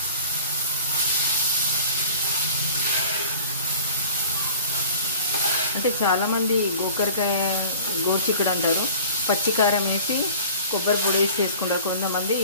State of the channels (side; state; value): both; inverted; correlation -0.44